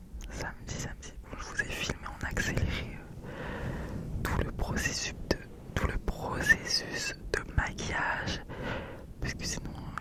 Bon, je vous ai filmé en accéléré tout le processus de maquillage. Parce que sinon,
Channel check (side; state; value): both; identical; correlation 1.00